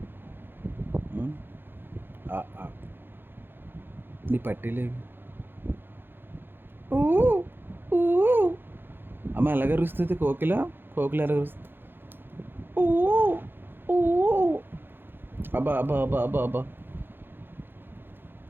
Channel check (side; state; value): left; late; 0.10 ms